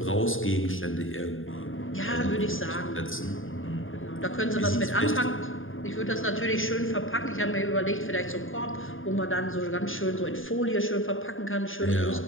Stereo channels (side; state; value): right; late; 0.59 ms